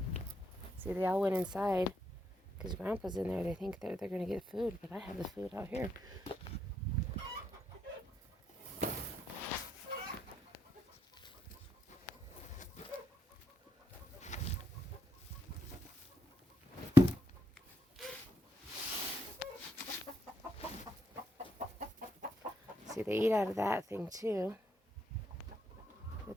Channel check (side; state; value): both; normal; correlation 0.78